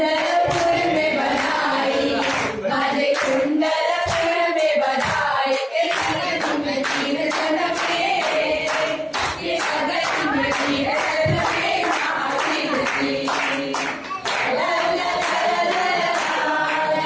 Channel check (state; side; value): identical; both; correlation 1.00